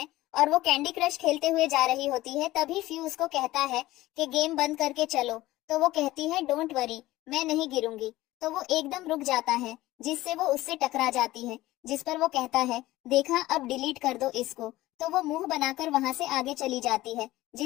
और वो कैंडी क्रश खेलते हुए जा रही होती है। तभी फ्यू उसको कहता है कि गेम बंद करके चलो, तो वो कहती है डोंट वरी, मैं नहीं गिरूंगी। तो वो एकदम रुक जाता है, जिससे वो उससे टकरा जाती है, जिस पर वो कहता है देखा, अब डिलीट कर दो इसको। तो वो मुंह बनाकर वहां से आगे चली जाती है।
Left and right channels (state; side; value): quieter; right; 17.2 dB